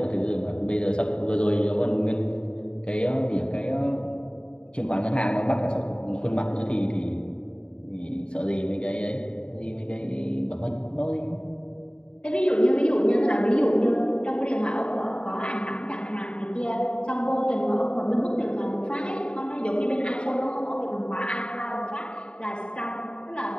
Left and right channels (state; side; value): late; right; 0.051 ms